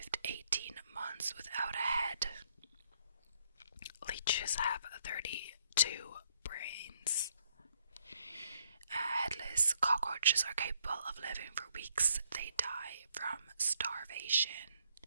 18 months without a head. Leeches have 32 brains. Headless cockroaches are capable of living for weeks. They die from starvation.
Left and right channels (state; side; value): inverted; both; correlation -0.70